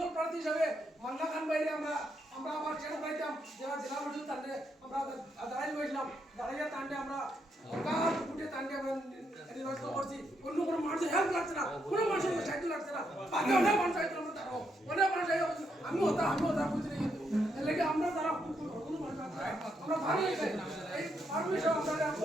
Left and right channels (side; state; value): both; normal; correlation 0.78